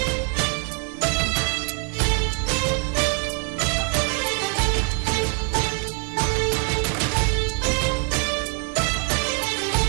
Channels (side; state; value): left; quieter; 39.9 dB